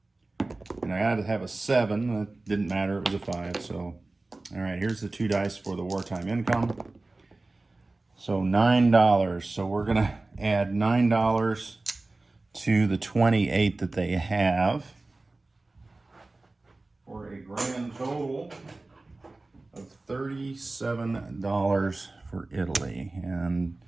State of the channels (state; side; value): quieter; left; 3.1 dB